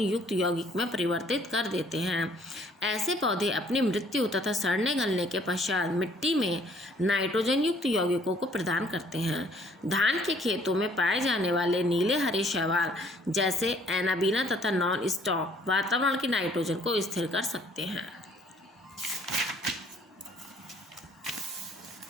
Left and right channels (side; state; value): both; normal; correlation 0.61